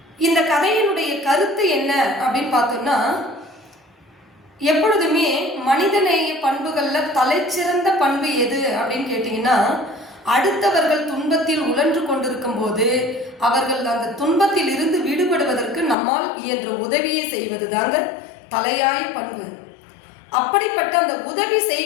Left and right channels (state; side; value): drops out; right; at 16.0 s